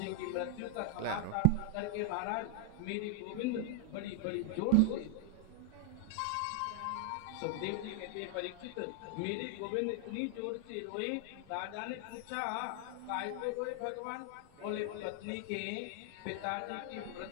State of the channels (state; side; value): different; both; correlation 0.00